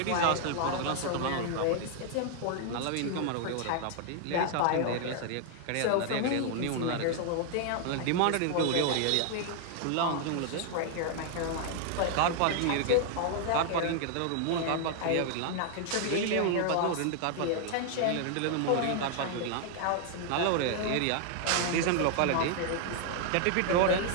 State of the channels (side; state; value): both; different; correlation 0.00